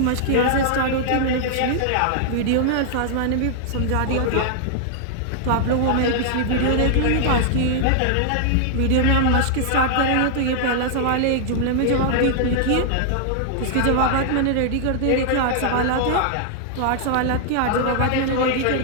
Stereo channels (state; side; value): different; both; correlation -0.01